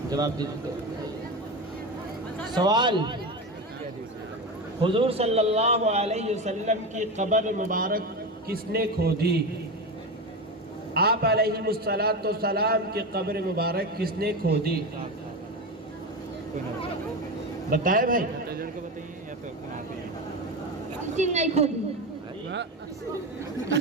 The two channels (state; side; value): normal; both; correlation 0.20